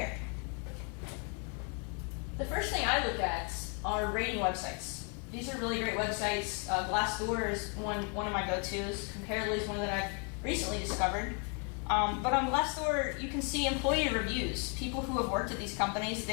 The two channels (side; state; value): right; quieter; 37.4 dB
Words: The first thing I look at are rating websites. These are really great websites. Glassdoor is one of my go-tos. Comparably is one that I've recently discovered. But on Glassdoor, you can see employee reviews. People who have worked at these companies,